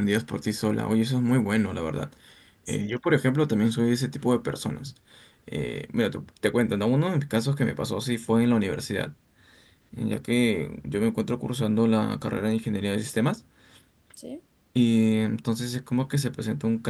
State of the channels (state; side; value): identical; both; correlation 1.00